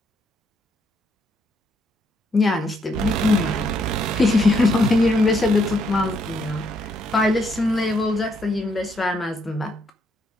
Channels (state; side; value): normal; both; correlation 0.74